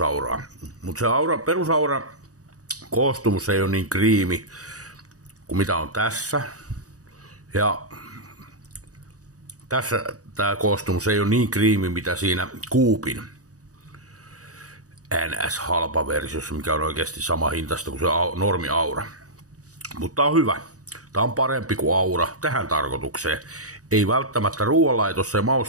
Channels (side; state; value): left; late; 0.66 ms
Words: Mutta se perusaura koostumus ei ole niin kriimi kuin mitä on tässä. Ja tässä tämä koostumus ei ole niin kriimi, mitä siinä Coopin NS-halpa versiossa, mikä on oikeasti sama hintasta kuin se normi Aura. Mutta tää on hyvä. Tää on parempi kuin Aura tähän tarkoitukseen. Ei välttämättä ruoanlaitossa ja